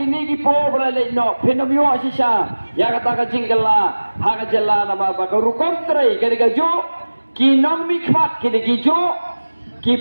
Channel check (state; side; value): inverted; both; correlation -1.00